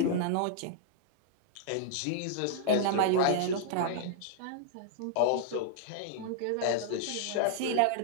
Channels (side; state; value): both; different; correlation -0.01